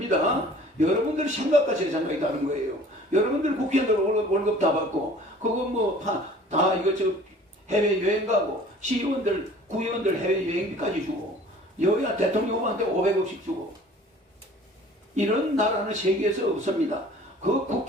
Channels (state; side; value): normal; both; correlation 0.48